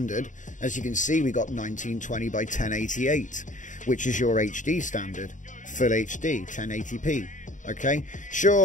as you can see, we got 1920 by 1088, which is your HD standard, full HD, 1080p. Okay,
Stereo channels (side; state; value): right; late; 0.37 ms